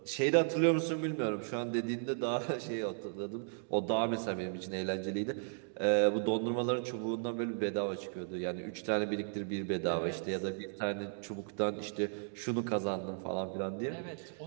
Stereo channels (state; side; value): silent; left; digital silence